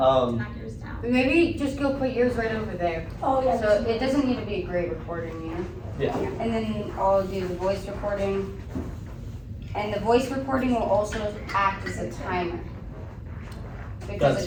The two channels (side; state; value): both; identical; correlation 1.00